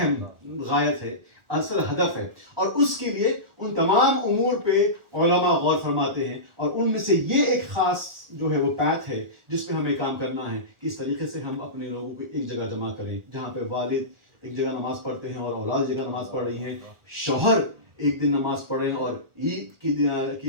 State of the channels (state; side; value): late; left; 1.4 ms